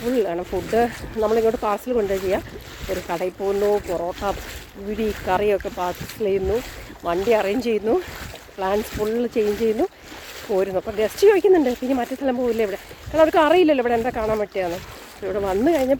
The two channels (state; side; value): identical; both; correlation 1.00